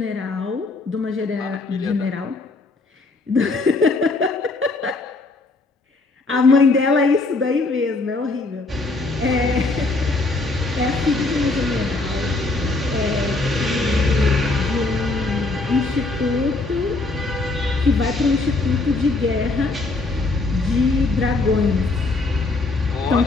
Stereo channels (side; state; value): right; quieter; 3.4 dB